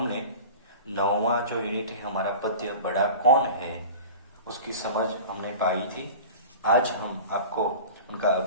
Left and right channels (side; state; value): both; inverted; correlation -0.37